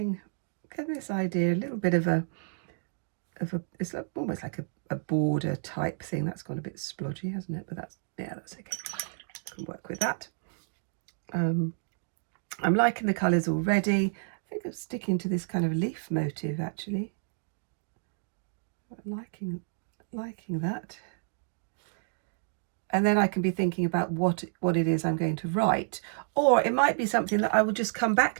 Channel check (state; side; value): silent; left; digital silence